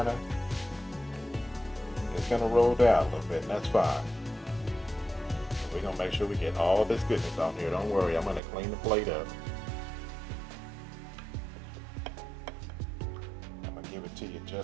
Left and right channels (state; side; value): drops out; left; at 8.4 s